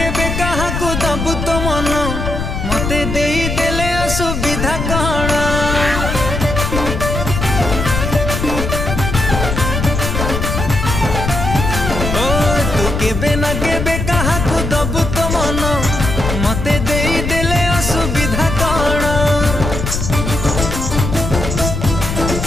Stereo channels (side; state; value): left; noise; rumble, 3 dB below the sound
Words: काहाकू दबु तो मन मते देई देले असुविधा कण। ओ तू केबे ना केबे काहाकू दबु तो मन मते देई देले असुविधा कण।